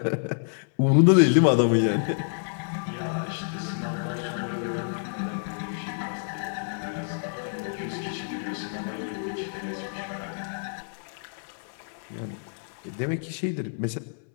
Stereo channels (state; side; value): silent; right; 59 dB below the other